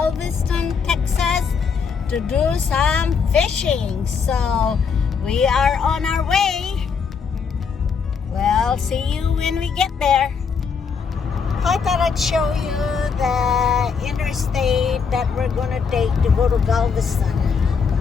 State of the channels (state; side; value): quieter; right; 5.9 dB